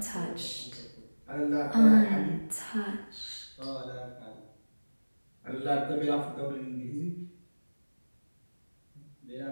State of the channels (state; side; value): inverted; both; correlation -1.00